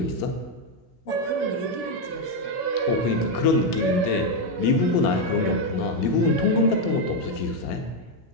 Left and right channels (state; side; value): late; right; 17 ms